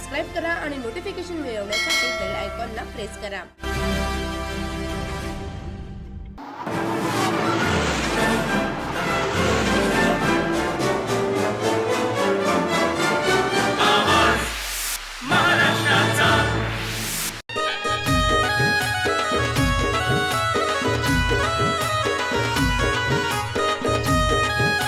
करा आणि नोटिफिकेशन मिळवण्यासाठी बेल आयकॉनला प्रेस करा.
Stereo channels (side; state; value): both; identical; correlation 1.00